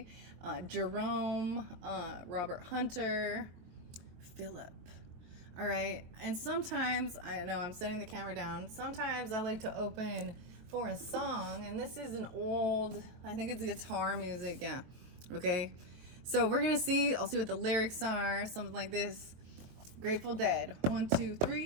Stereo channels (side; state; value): left; late; 23 ms